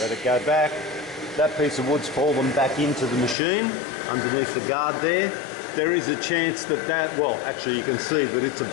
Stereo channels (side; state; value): right; drops out; at 3.4 s